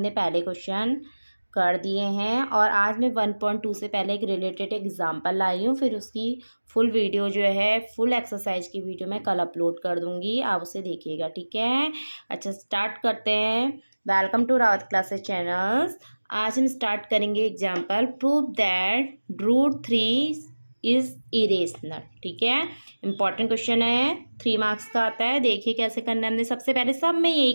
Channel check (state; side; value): inverted; both; correlation -1.00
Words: पहले क्वेश्चन कर दिए हैं और आज मैं 1.2 से पहले एक रिलेटेड एग्जांपल लाई हूँ। फिर उसकी फुल वीडियो जो है, फुल एक्सरसाइज की वीडियो मैं कल अपलोड कर दूँगी, आप उसे देखिएगा, ठीक है। अच्छा, स्टार्ट करते हैं। Welcome to Rawat classes channels. आज हम स्टार्ट करेंगे example, prove that √3 is irrational, ठीक है। इंपॉर्टेंट क्वेश्चन है, 3 मार्क्स का आता है। देखिए कैसे करना है। हमने सबसे पहले सब में यही